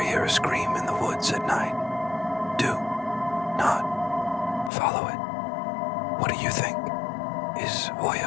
hear a scream in the woods at night, do not follow it. What do you think? Is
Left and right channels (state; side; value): drops out; right; at 4.7 s